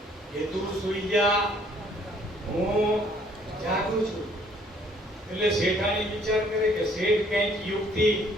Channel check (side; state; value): both; normal; correlation 0.61